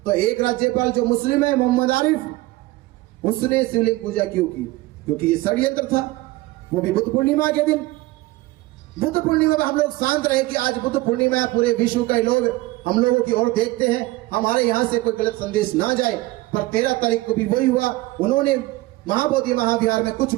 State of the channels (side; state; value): left; quieter; 19.2 dB